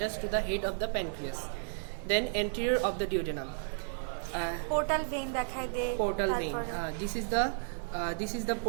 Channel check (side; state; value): left; silent; digital silence